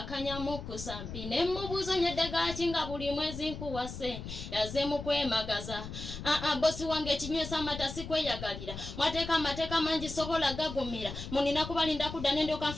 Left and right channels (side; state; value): left; noise; rumble, 9 dB below the sound